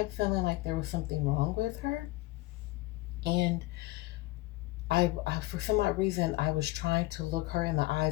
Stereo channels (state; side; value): quieter; right; 19.8 dB